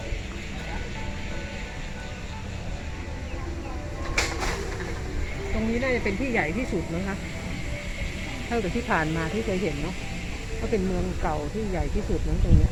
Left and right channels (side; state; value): both; identical; correlation 1.00